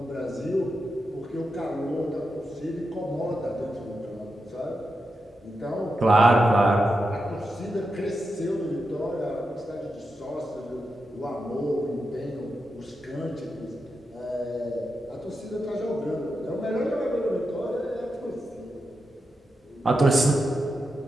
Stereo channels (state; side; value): normal; both; correlation 0.87